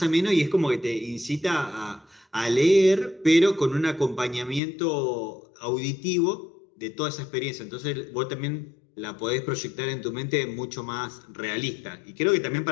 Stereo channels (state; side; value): drops out; right; at 4.6 s